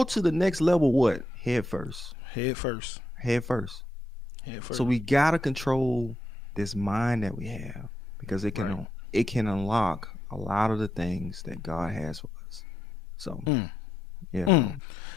to the next level, what? Head first. Head first. Head first. Head first. So we gotta control this mind that we have, because it can unlock a lot of the things that God has for us. So yeah. Mm.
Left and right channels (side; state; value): both; normal; correlation 0.82